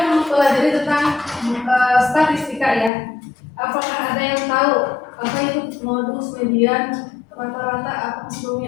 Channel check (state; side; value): drops out; right; at 2.9 s